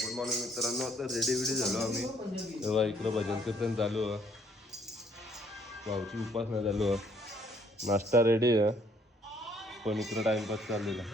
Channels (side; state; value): both; normal; correlation 0.65